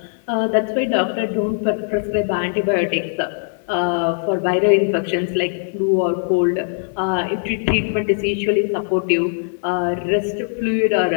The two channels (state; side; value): silent; right; 66 dB below the other